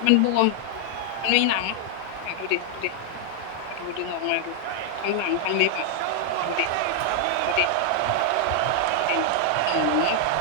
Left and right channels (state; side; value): different; both; correlation 0.00